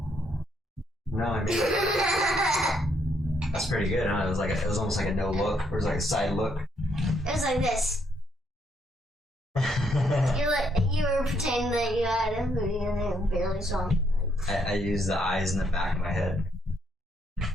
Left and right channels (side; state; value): both; normal; correlation 0.73